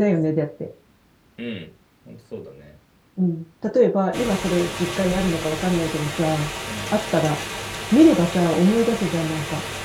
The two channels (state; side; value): identical; both; correlation 1.00